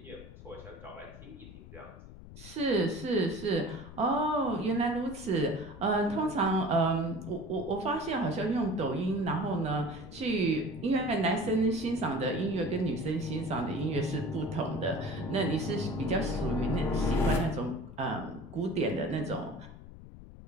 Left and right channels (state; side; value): noise; left; rumble, 16 dB below the sound